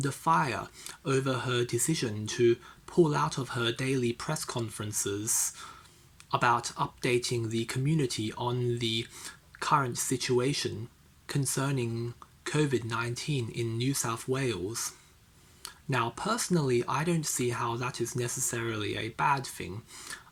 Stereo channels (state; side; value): identical; both; correlation 1.00